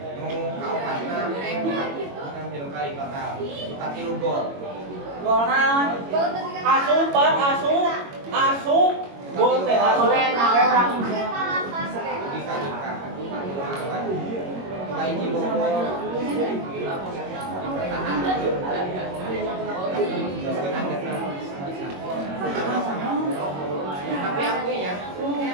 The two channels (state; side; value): late; left; 22 ms